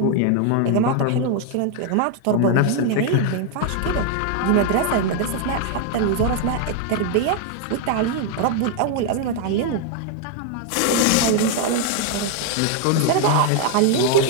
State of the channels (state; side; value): different; both; correlation 0.00